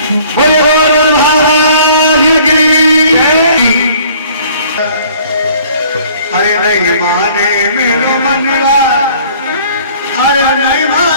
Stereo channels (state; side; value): inverted; both; correlation -0.55